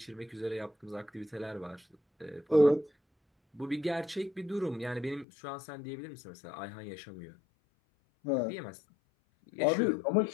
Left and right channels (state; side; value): drops out; right; at 5.2 s